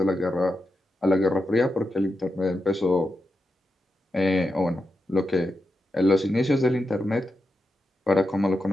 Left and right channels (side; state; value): both; normal; correlation 0.88